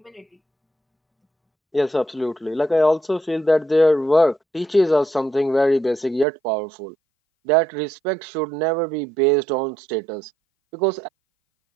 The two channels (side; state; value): left; drops out; at 6.2 s